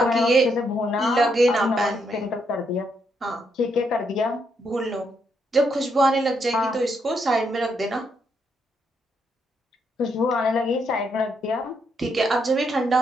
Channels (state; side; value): normal; both; correlation 0.77